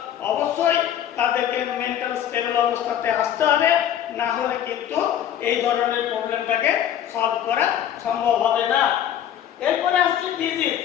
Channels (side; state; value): right; quieter; 10.3 dB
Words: অবশ্যই তাদেরকে মেন্টাল স্টেবল অবস্থাতে আসতে হবে, না হলে কিন্তু এই ধরনের প্রবলেমটাকে সলভ করা সম্ভব হবে না। এরপরে আসছে ডিজিজ।